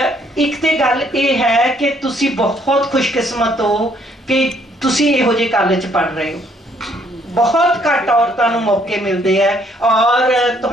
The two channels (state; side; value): normal; both; correlation 0.66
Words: ਇੱਕ ਤੇ ਗੱਲ ਇਹ ਹੈ ਕਿ ਤੁਸੀਂ ਬਹੁਤ ਖੁਸ਼ਕਿਸਮਤ ਹੋ ਕਿ ਤੁਸੀਂ ਇਹੋ ਜਿਹੇ ਕਾਲਜ 'ਚ ਪੜ੍ਹ ਰਹੇ ਹੋ। ਬਹੁਤ ਘੱਟ ਔਰਤਾਂ ਨੂੰ ਮੌਕੇ ਮਿਲਦੇ ਹੈ, ਔਰ